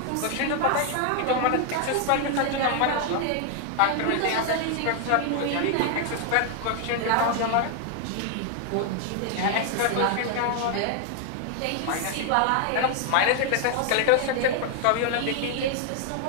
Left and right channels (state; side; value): different; both; correlation 0.00